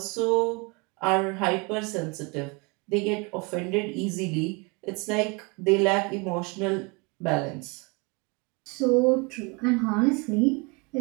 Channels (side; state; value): left; quieter; 29.2 dB